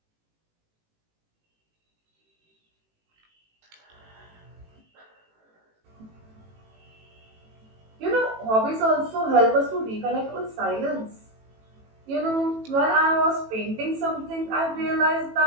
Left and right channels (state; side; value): late; left; 18 ms